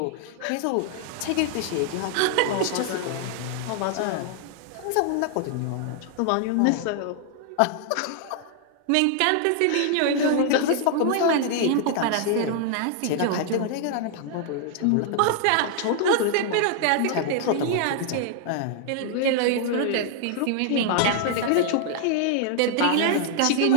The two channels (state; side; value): different; both; correlation 0.00